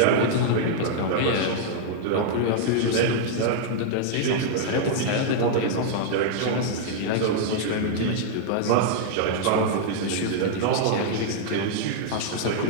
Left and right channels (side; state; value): both; different; correlation -0.01